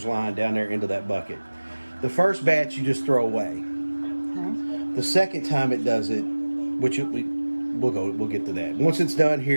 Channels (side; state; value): both; inverted; correlation -1.00